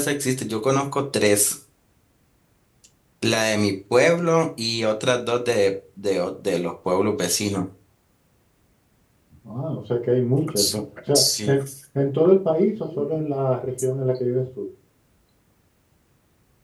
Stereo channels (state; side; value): identical; both; correlation 1.00